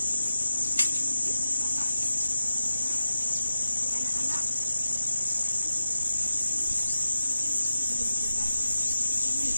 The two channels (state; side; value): inverted; both; correlation -0.91